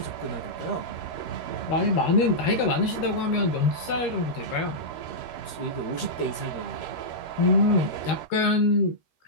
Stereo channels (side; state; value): right; late; 13 ms